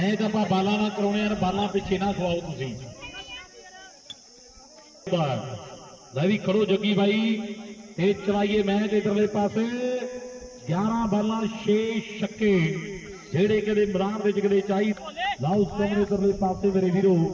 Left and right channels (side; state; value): both; identical; correlation 1.00